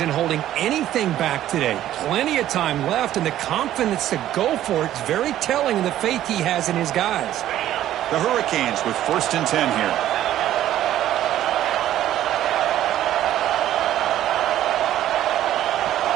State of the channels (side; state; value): left; quieter; 12.6 dB